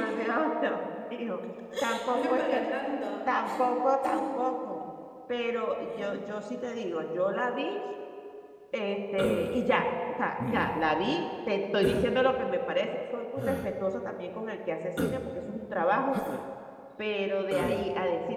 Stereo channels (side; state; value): both; identical; correlation 1.00